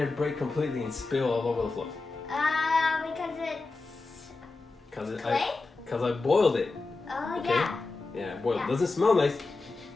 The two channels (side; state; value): right; quieter; 3.7 dB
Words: it break completely and spill all over the floor? Because it's Because clay. Because I boiled it. Oh Okay. yeah. Yeah, boiled. Yeah. Doesn't smell nice,